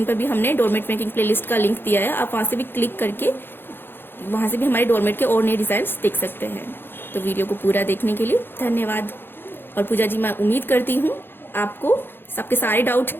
पर भी हमने डोरमेट मेकिंग प्लेलिस्ट का लिंक दिया है, आप वहां से भी क्लिक करके वहां से भी हमारे डोरमेट के और नए डिजाइन देख सकते हैं। तो वीडियो को पूरा देखने के लिए धन्यवाद। और पूजा जी, मैं उम्मीद करती हूँ आपको सबके सारे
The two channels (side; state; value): right; late; 0.10 ms